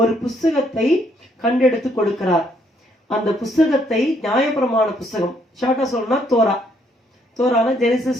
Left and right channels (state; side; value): normal; both; correlation 0.70